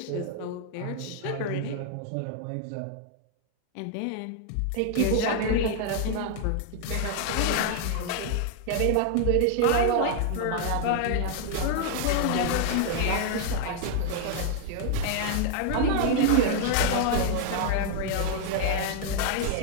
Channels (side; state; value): both; different; correlation 0.00